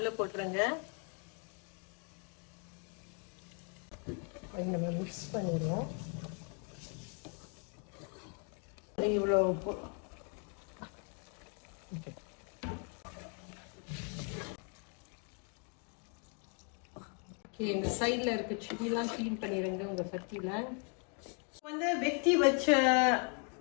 போட்டுருங்க. நம்ம மிக்ஸ் பண்ணிடுவோம். இவ்வளோ ஓகே, இந்த சைடில் இருக்க சில்லிலாம் க்ளீன் பண்ணிடுங்க உங்கள் சட்டியில். வந்து வெட்டி வச்ச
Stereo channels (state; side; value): quieter; right; 39.2 dB